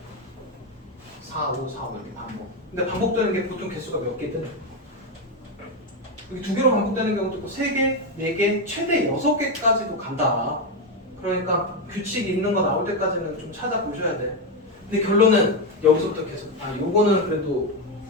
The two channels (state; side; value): normal; both; correlation 0.09